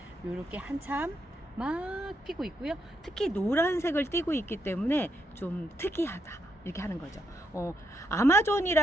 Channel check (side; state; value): both; normal; correlation 0.79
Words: 이렇게 한참 막 피고 있고요. 특히 노란색을 띠고 있기 때문에 좀 특이하다 이렇게 하는 거죠.